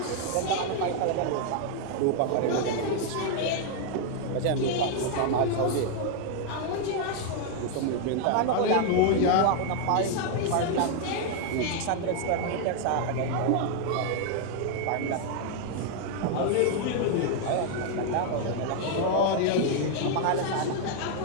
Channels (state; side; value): different; both; correlation 0.00